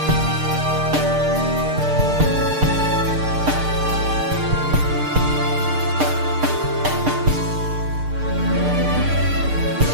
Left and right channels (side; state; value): left; late; 6.6 ms